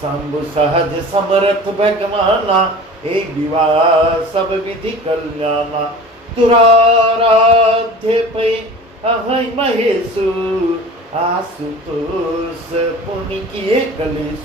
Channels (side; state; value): both; normal; correlation 0.40